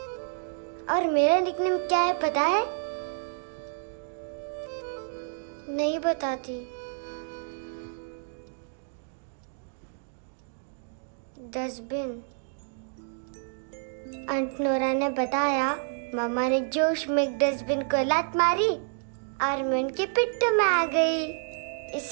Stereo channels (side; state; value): left; silent; digital silence